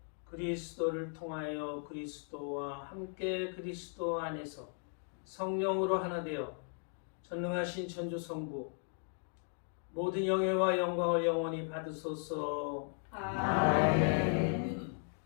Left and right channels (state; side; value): silent; right; 53 dB below the other